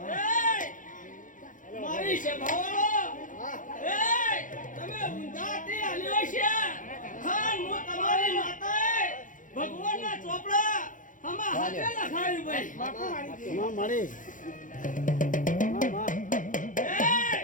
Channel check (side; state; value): right; late; 0.38 ms